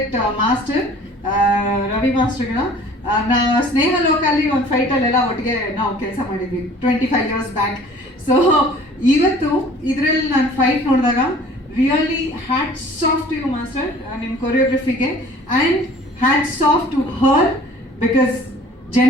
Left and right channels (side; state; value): both; normal; correlation 0.49